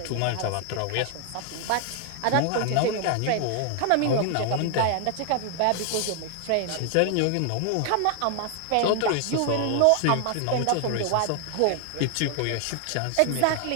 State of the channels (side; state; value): both; different; correlation 0.00